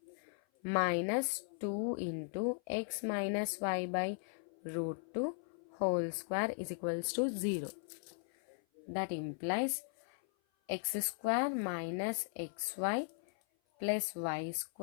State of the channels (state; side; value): silent; right; 52 dB below the other